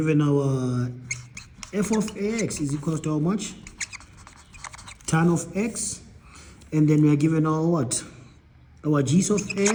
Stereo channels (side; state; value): both; identical; correlation 1.00